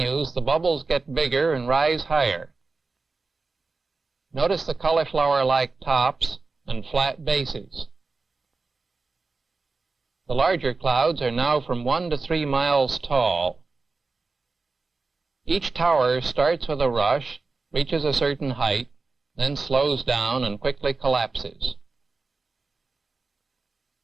the bubbles get bigger and rise higher. Notice the cauliflower-like tops and flat bases. The larger clouds are now from 1 to 3 miles tall. Each tower starts with a rush, reaches a certain height, then slows down and quickly collapses.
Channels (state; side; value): quieter; left; 3.9 dB